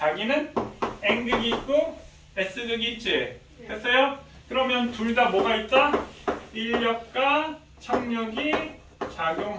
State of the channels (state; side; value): identical; both; correlation 1.00